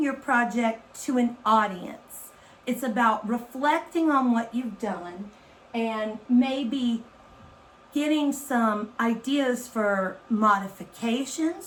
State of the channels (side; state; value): both; identical; correlation 1.00